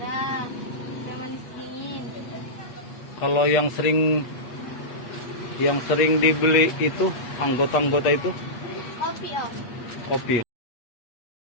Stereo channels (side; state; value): right; late; 8.3 ms